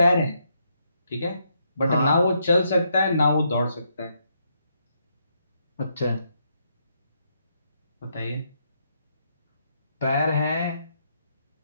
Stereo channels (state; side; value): inverted; both; correlation -0.77